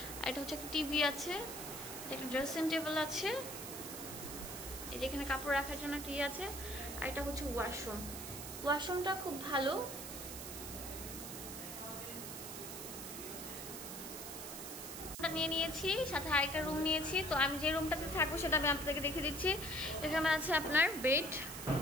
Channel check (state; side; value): noise; right; hiss, 8 dB below the sound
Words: আর এটা হচ্ছে একটা টিভি আছে, একটা ড্রেসিং টেবিল আছে, এই যে এখানে কাপড় রাখার জন্য একটা আছে। আর এটা হচ্ছে ওয়াশরুম। ওয়াশরুমটা খুব ভালো। নিয়ে নিয়েছি, সাথে আরেকটা রুম নিয়েছি। তো আমি যে রুমটাতে থাকবো সেটা আমি আপনাদেরকে দেখে দিচ্ছি। এখানে আছে আপনার বেড,